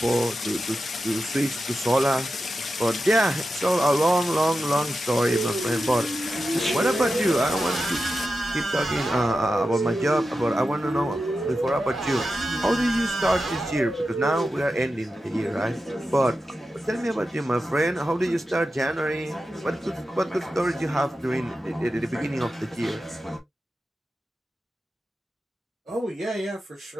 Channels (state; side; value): normal; both; correlation 0.91